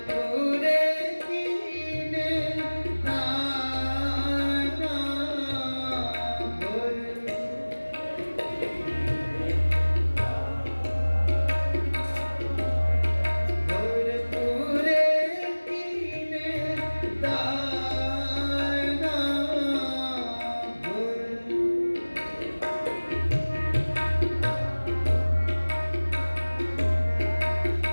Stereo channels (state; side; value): inverted; both; correlation -1.00